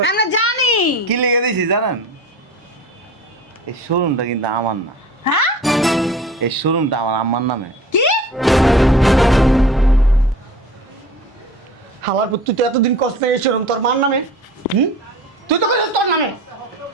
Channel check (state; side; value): normal; both; correlation 0.41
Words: আমরা জানি। কি লিখে দিছি জানেন? এই শোরুমটা কিন্তু আমার না, হ্যাঁ, এই শোরুমটা আমার আম্মার নামে। কি? হালার পুত, তুই তো এতদিন কষ্ট নেই এই শোরুম তোর মার নামে। তুই তো কইছিস তোর নামে।